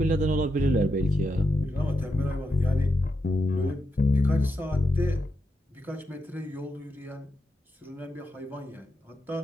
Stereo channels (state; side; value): normal; both; correlation 0.84